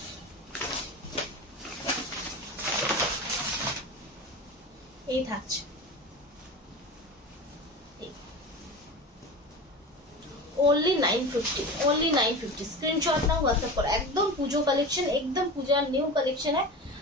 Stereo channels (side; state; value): both; normal; correlation 0.30